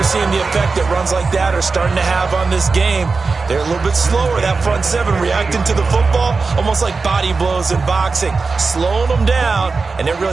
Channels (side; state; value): left; quieter; 4.3 dB